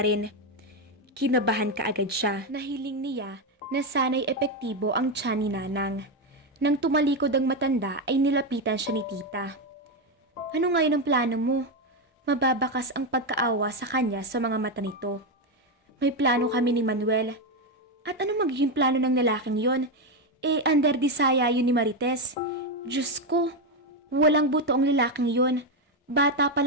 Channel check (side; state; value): both; normal; correlation 0.08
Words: rin. Kinabahan ka agad siya. Nahiling niya na sana'y epektibo ang tiyan ni Nanang. Nang tumalikod ang matanda ay nilapitan siya ni tita. Ano ngayon ang plano mo? Mababakas ang pagkaawa sa kanya sa mga mata nito. May plano kami ni Manuel. At ano magiging plano ng lalaking yon? Under disaya yun ni Marites. Diyos ko, walang buto ang lalaking yon. Bata pa